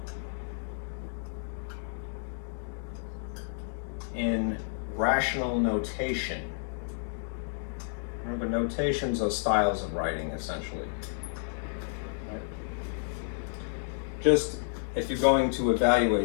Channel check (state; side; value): silent; right; digital silence